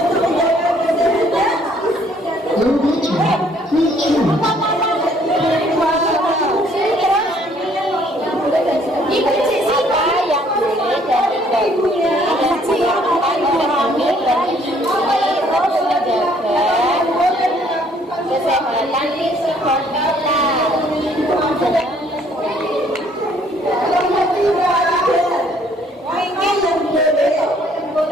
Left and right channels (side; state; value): both; normal; correlation 0.63